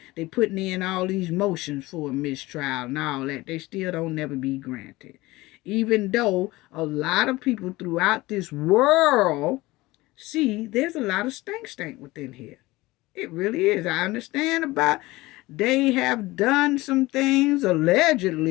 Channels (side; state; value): right; quieter; 20.0 dB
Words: They putting in all these motions for a mistrial and all that. They still don't never be granted. Even though a lot of people throughout this world see there's a lot of stank within here. It really is. I understand about they have done some things